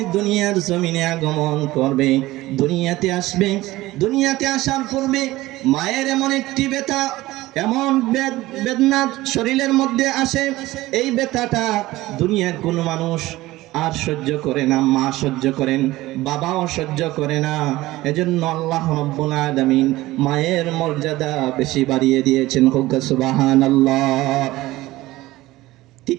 দুনিয়ার জমিনে আগমন করবে, দুনিয়াতে আসবে, দুনিয়াতে আসার পূর্বে মায়ের এমন একটি ব্যথা, এমন বেদনা শরীরের মধ্যে আসে, এই ব্যথাটা দুনিয়ার কোনো মানুষ আর সহ্য করে না। মা সহ্য করেন, বাবাও সহ্য করে না। এজন্য আল্লাহ রাব্বুল আলামিন মায়ের মর্যাদা বেশি বাড়িয়ে দিয়েছেন। সুবহানাল্লাহ।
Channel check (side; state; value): left; quieter; 17.9 dB